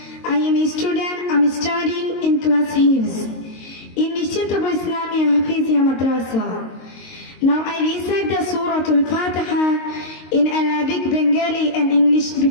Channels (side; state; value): right; late; 22 ms